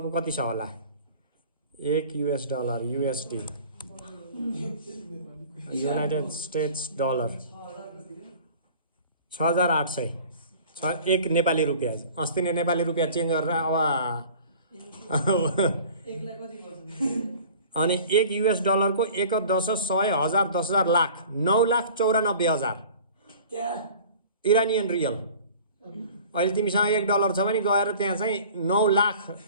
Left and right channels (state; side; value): inverted; both; correlation -0.45